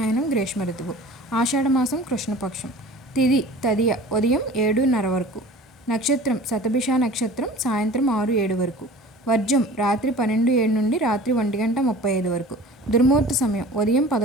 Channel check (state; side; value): normal; both; correlation 0.42